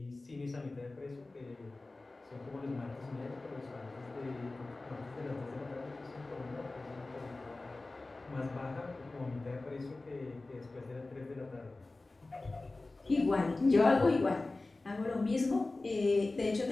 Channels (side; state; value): right; quieter; 3.2 dB